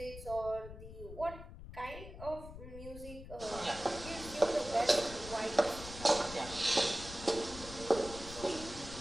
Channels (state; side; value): noise; left; rumble, 12 dB below the sound